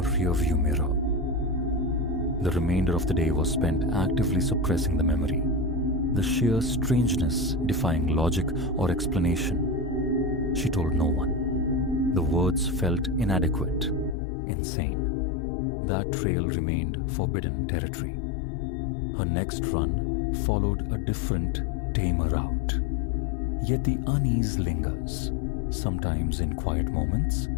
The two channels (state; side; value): drops out; right; at 14.2 s